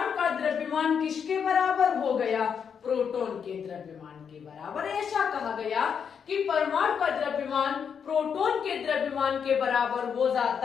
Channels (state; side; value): quieter; right; 7.1 dB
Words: का द्रव्यमान किसके बराबर हो गया? प्रोटॉन के द्रव्यमान के बराबर। ऐसा कहा गया कि परमाणु का द्रव्यमान प्रोटॉन के द्रव्यमान के बराबर हो